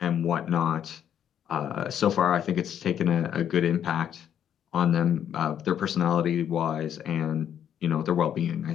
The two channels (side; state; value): right; quieter; 9.5 dB